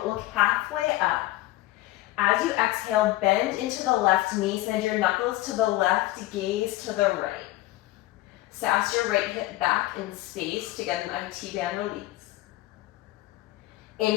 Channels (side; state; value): right; quieter; 17.2 dB